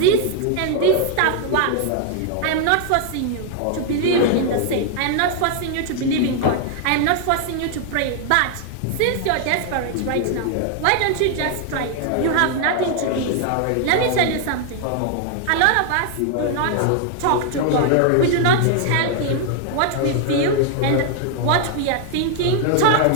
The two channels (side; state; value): both; different; correlation 0.00